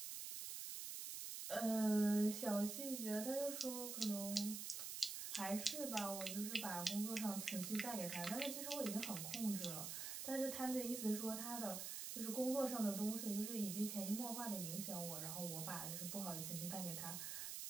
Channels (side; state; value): right; noise; hiss, 4 dB below the sound